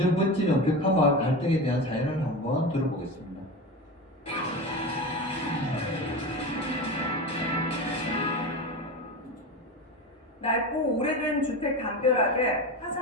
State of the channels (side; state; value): both; normal; correlation 0.25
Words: 번지는 벽화마을 갈등에 대한 사연을 한번 들어보겠습니다. 낡고 오래된 주택 담벼락에